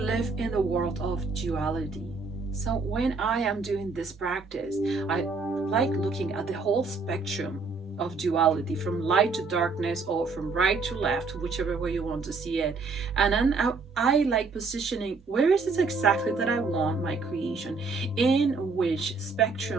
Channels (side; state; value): left; quieter; 4.3 dB